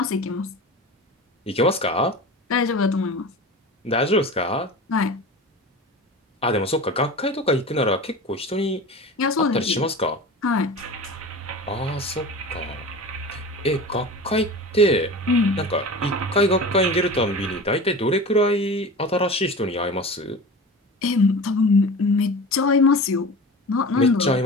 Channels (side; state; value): both; normal; correlation 0.34